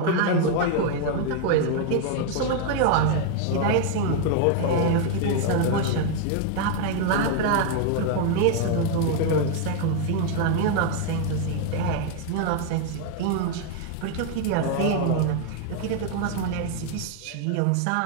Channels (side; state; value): both; different; correlation 0.01